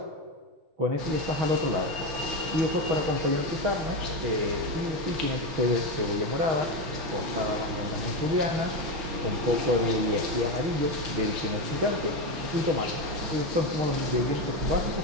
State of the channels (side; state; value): left; late; 5.8 ms